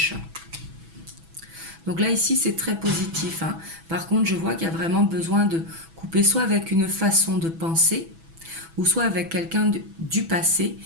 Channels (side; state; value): left; late; 6.1 ms